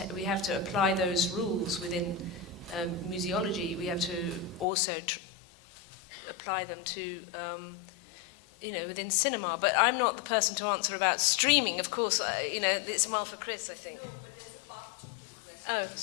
apply those rules within museology. We have to also apply them to within cinema. But I'm not the person to answer about streaming. Of course, it's more for Chris, I think. No, but there's a part two to the question. Oh,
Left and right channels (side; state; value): right; drops out; at 4.7 s